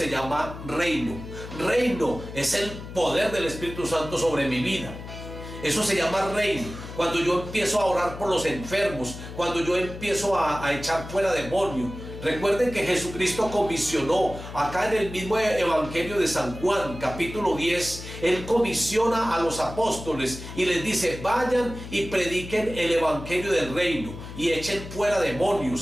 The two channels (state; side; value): noise; left; hum, 12 dB below the sound